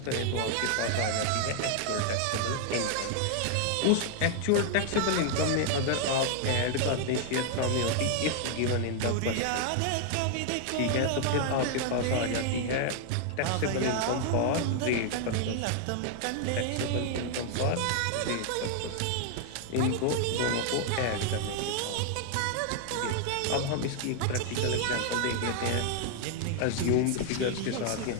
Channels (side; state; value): both; different; correlation 0.00